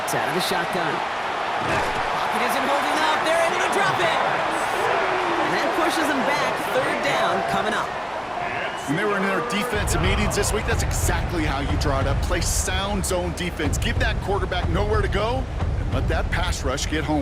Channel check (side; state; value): both; identical; correlation 1.00